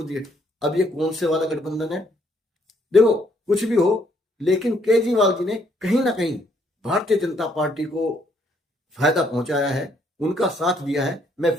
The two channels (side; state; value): both; normal; correlation 0.69